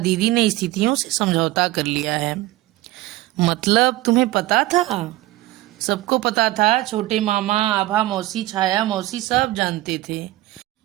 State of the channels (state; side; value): quieter; left; 17.3 dB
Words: ने स्थितियों से समझौता कर लिया है। मतलब तुम्हें पता था? सबको पता था। छोटे मामा, आभा मौसी, छाया मौसी सब जानते थे।